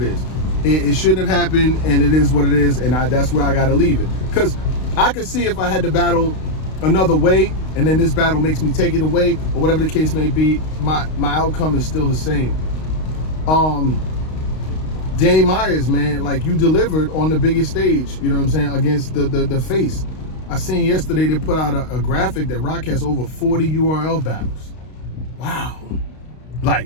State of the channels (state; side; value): late; right; 32 ms